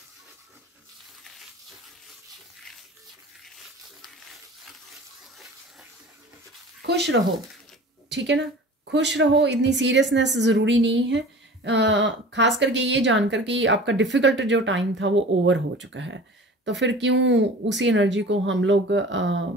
खुश रहो, ठीक है ना, खुश रहो। इतनी सीरियसनेस ज़रूरी नहीं है। खास करके ये जानकर कि आपका डिफ़िकल्ट जो टाइम था वो ओवर हो चुका है, तो फिर क्यों उसी एनर्जी को हम लोग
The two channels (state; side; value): normal; both; correlation 0.41